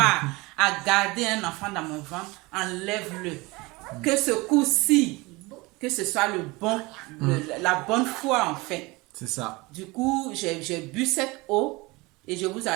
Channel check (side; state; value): left; quieter; 23.4 dB